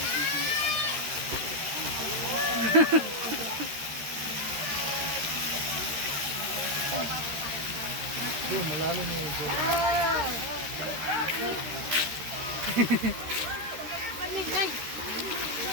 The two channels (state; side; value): late; left; 13 ms